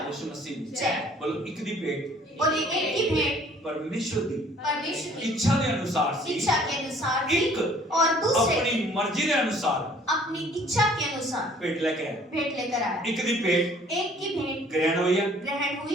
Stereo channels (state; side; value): normal; both; correlation 0.55